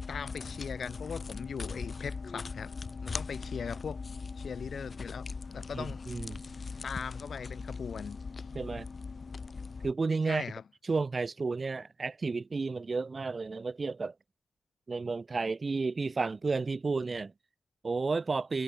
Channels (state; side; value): normal; both; correlation 0.91